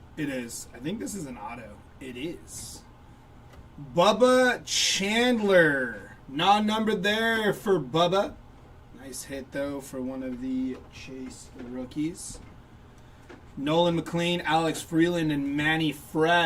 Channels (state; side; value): identical; both; correlation 1.00